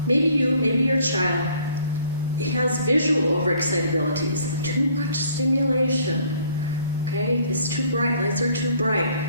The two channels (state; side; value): inverted; both; correlation -0.59